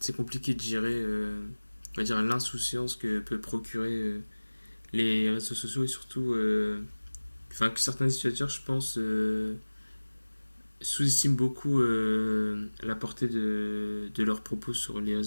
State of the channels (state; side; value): inverted; both; correlation -1.00